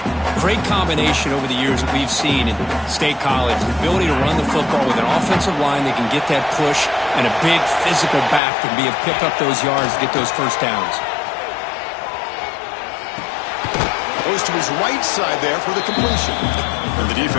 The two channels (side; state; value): right; drops out; at 8.4 s